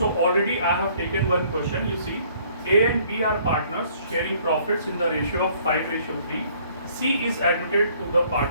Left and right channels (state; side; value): inverted; both; correlation -0.60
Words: already I have taken one question. You see, A and B are partners sharing profits in the ratio of 5:3. C is admitted to the